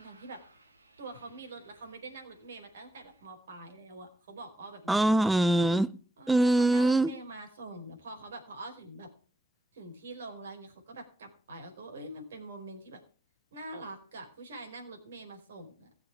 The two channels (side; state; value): both; normal; correlation 0.88